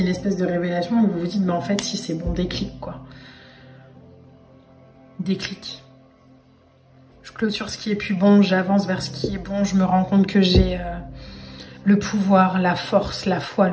a une espèce de révélation où vous vous dites, mais en fait, si c'est bon, déclic, quoi. Déclic. Je clôture ce qui est plus bon, j'avance vers ce qui est bon, je me rends compte que j'ai le pouvoir, la force, la foi,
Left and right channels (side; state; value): both; identical; correlation 1.00